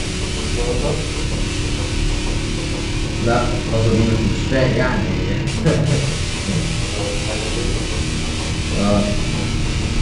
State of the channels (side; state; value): both; identical; correlation 1.00